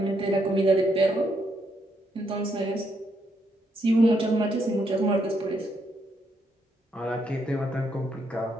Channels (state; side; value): normal; both; correlation 0.76